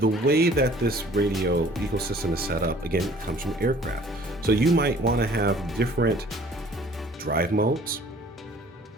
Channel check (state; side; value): normal; both; correlation 0.53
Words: way that this radio ecosystem is set up, again, it comes from aircraft. So you might want to have different drive modes,